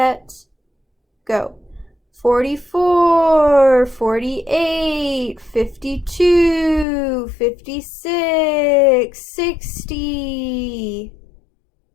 go. 44, 48, 52, 56, 60.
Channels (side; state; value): right; drops out; at 6.9 s